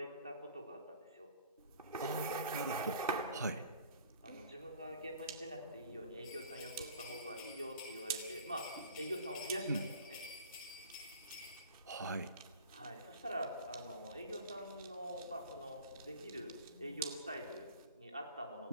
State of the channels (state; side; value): inverted; both; correlation -0.46